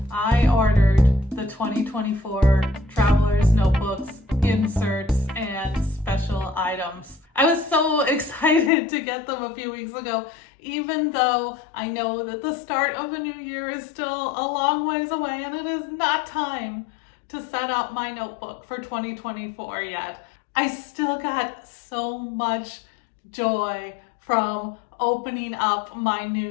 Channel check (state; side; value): drops out; right; at 8.7 s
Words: I ordered the 2024 Traveler's Notebooks, inserts, and special items. I was so excited to get them a few weeks ago, even though I know that the start of the new year is still a long ways away and it is not time to set up my notebook for 2024 yet. I still got so much joy from opening up my